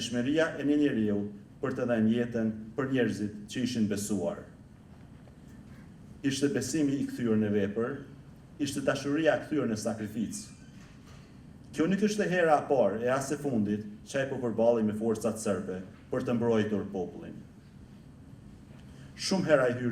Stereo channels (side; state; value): both; identical; correlation 1.00